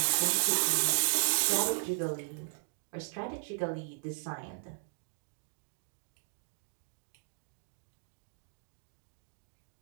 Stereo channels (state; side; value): silent; left; digital silence